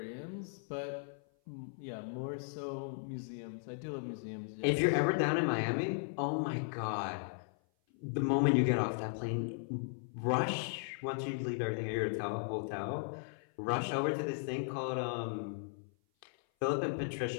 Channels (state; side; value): silent; right; 53 dB below the other